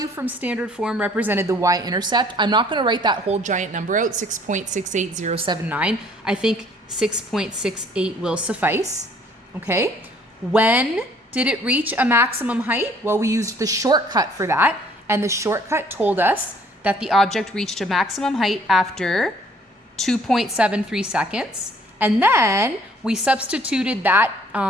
from standard form represented the y-intercept. I'm not going to write that whole giant number out, 6.68079. I think 6.68 will suffice. Okay. When did it reach a maximum height? Well, we used the shortcut for that, and the shortcut told us that the object reached a maximum height after 2.73 seconds. And then we substituted that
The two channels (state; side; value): normal; both; correlation 0.59